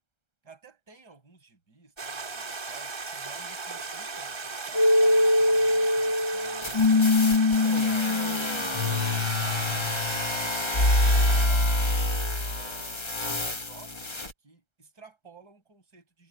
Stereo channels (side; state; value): right; late; 1.3 ms